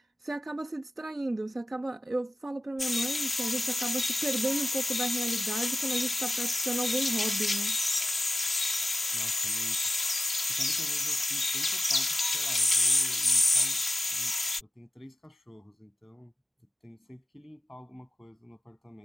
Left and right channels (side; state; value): both; normal; correlation 0.95